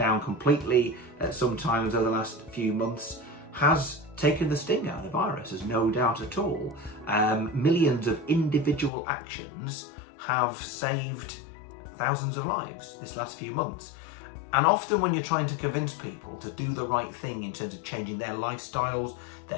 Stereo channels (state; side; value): drops out; right; at 8.9 s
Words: completely sometimes over the last few months, has taken the sting out of the virus, there's no doubt at all. Millions of individual actions have saved thousands of lives this last few months. And often when you're trying to convince people to do the right thing in terms of changing their lifestyles,